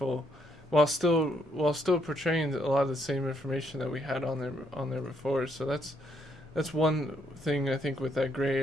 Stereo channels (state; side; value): normal; both; correlation 0.73